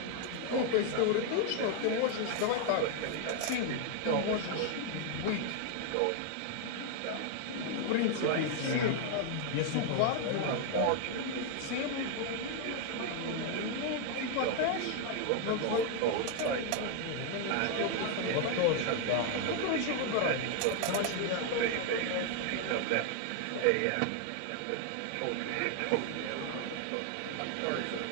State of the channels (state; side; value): different; both; correlation 0.00